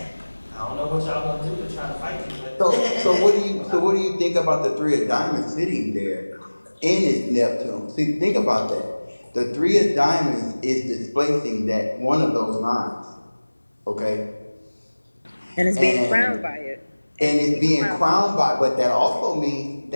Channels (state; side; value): inverted; both; correlation -1.00